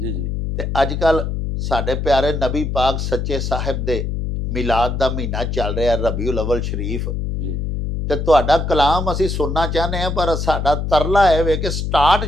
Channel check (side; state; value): left; noise; hum, 2 dB below the sound